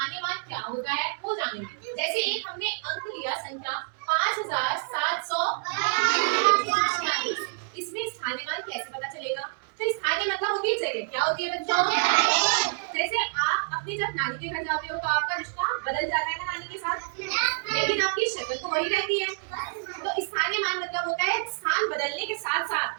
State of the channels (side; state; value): left; silent; digital silence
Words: मान क्या होता है वो जानेंगे। जैसे एक हमने अंक लिया संख्या 5740, इसमें स्थानीय मान कैसे पता चलेगा? तो स्थानीय मतलब होती है जगह। क्या होती है बच्चों? जैसे आप अपनी जब नानी के घर जाते हो तो आपका रिश्ता बदल जाता है ना नानी के साथ, लेकिन आपकी शक्ल तो वही रहती है। तो स्थानीय मान मतलब होता है स्थान बदलने के साथ